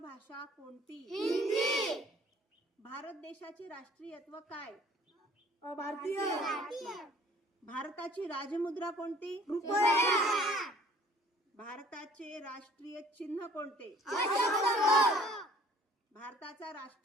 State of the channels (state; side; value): normal; both; correlation 0.54